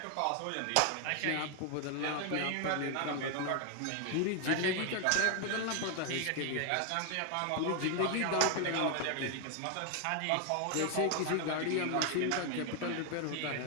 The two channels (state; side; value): different; both; correlation 0.01